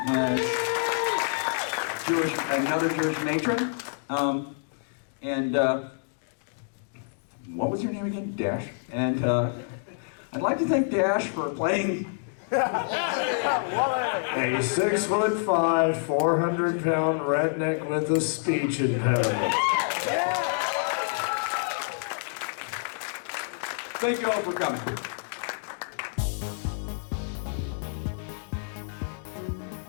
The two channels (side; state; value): right; silent; digital silence